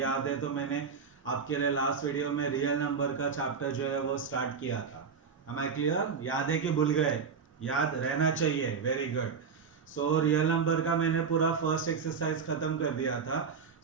है तो मैंने आपके लिए लास्ट वीडियो में रियल नंबर का चैप्टर जो है वो स्टार्ट किया था। Am I clear? याद है कि भूल गए? याद रहना चाहिए। Very good. रियल नंबर का मैंने पूरा फर्स्ट एक्सरसाइज खत्म कर दिया था।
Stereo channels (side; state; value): left; quieter; 5.9 dB